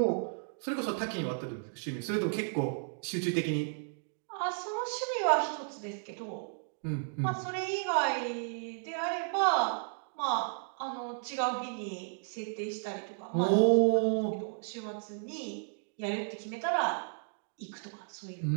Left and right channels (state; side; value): silent; left; digital silence